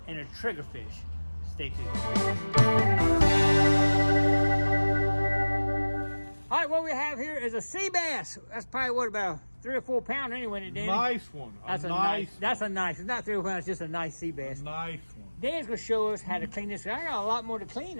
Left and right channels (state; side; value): inverted; both; correlation -1.00